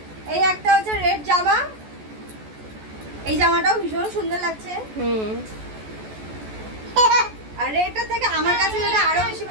এই একটা হচ্ছে রেড জামা, এই জামাটাও ভীষণ সুন্দর লাগছে। আর রেডটা থেকে আমার কাছে যেটা আরো বেশি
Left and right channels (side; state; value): left; late; 14 ms